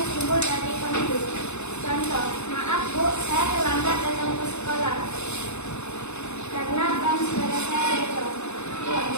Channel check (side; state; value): right; late; 0.81 ms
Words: timbul dari konflik. Contoh, maaf Bu, saya terlambat datang ke sekolah karena ban sepeda saya jatuh. Ya,